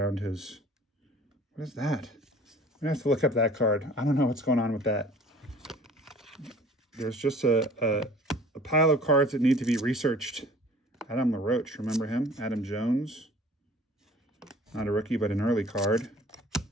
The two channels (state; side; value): normal; both; correlation 0.49